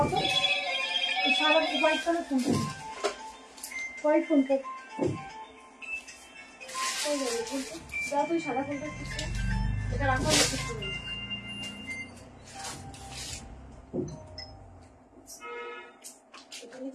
সারা হোয়াইট কালার ফোনটা, হোয়াইট ফোনটা তুই সাদা ফোনটা এটা রাখা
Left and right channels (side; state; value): both; identical; correlation 1.00